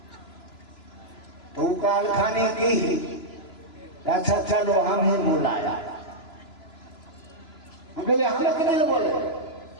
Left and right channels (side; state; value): right; late; 3.0 ms